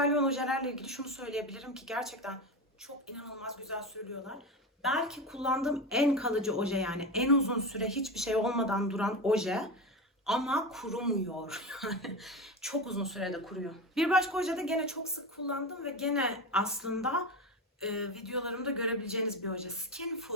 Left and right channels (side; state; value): both; normal; correlation 0.21